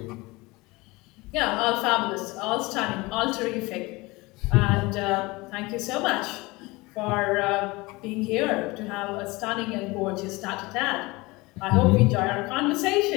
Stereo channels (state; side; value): quieter; right; 22.9 dB